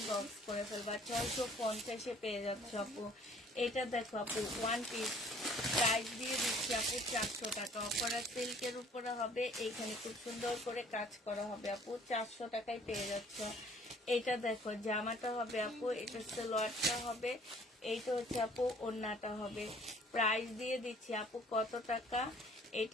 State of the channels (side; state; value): both; normal; correlation 0.55